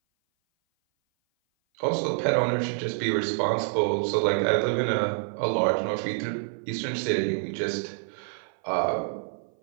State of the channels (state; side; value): silent; left; 56 dB below the other